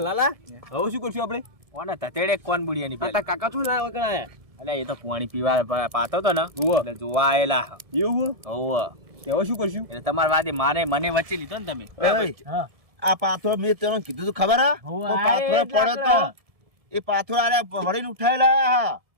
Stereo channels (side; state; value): left; late; 1.7 ms